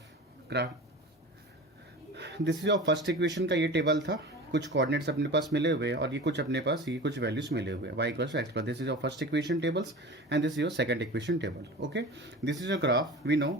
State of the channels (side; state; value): both; normal; correlation 0.35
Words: This is your first equation का ये table था, कुछ coordinates अपने पास मिले हुए और ये कुछ अपने पास ये कुछ वैल्यूज मिले हुए, y equals to x plus. This is your first equation tables and this is your second equation table. Okay, this is your graph. We know